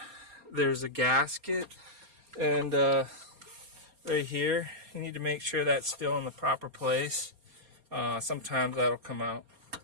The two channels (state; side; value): late; left; 4.3 ms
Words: there's a gasket, and right here, you need to make sure that's still in the proper place. Sometimes that'll come out.